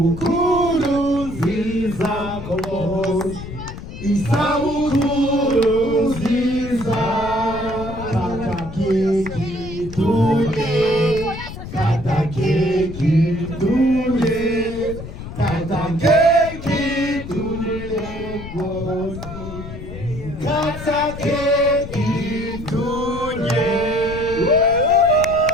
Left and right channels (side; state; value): left; noise; rumble, 11 dB below the sound